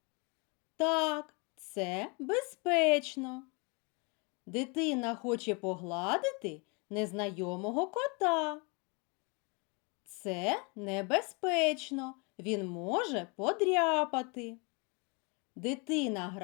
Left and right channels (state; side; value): quieter; right; 31.6 dB